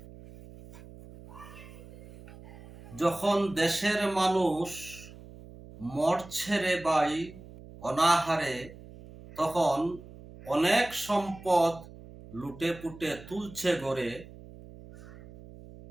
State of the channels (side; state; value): right; noise; hum, 18 dB below the sound